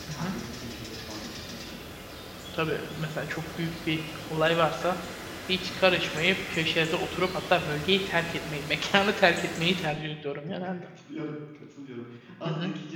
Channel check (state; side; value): identical; both; correlation 1.00